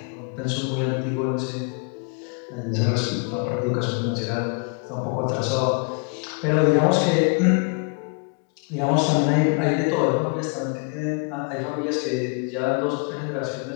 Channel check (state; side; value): quieter; right; 36.1 dB